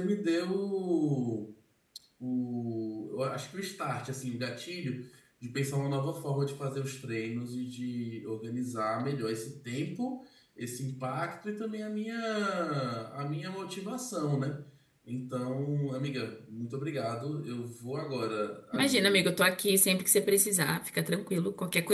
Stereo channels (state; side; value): identical; both; correlation 1.00